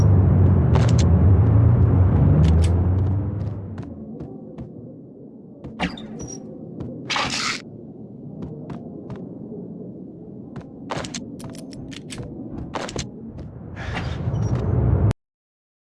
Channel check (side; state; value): both; identical; correlation 1.00